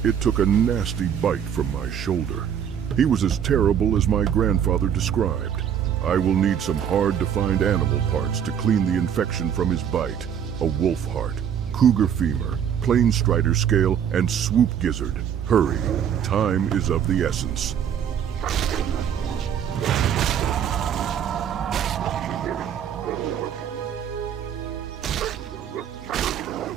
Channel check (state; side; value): quieter; left; 8.7 dB